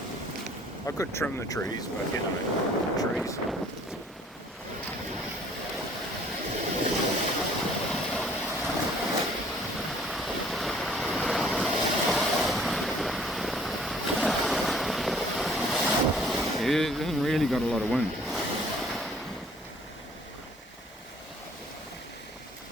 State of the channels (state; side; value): normal; both; correlation 0.56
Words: I could trim the trees, but you know, the trees. Yeah, it hasn't really got a lot of wind.